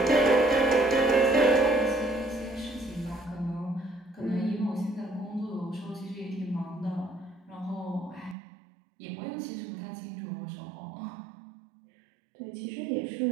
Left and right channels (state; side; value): drops out; left; at 8.3 s